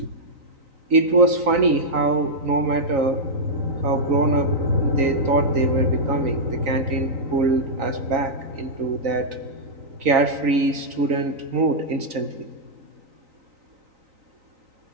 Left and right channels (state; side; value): late; left; 3.9 ms